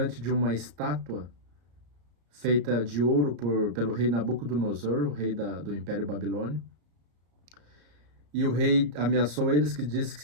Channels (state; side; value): late; left; 34 ms